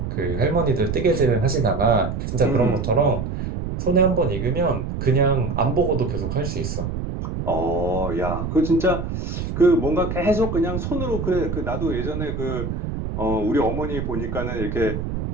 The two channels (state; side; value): noise; right; rumble, 4 dB below the sound